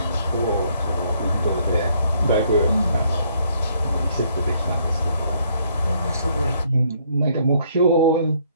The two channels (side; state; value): both; inverted; correlation -0.67